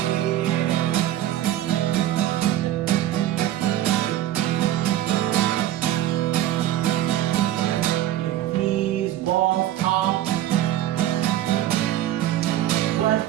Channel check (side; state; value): left; quieter; 12.8 dB